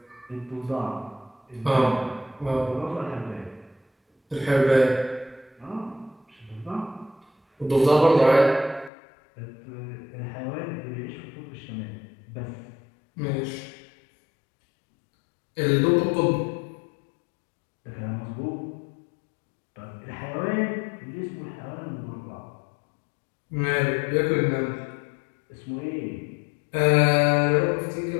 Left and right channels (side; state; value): right; drops out; at 8.9 s